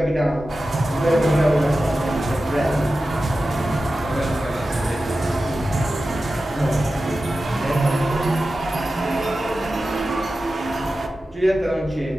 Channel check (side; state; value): both; normal; correlation 0.93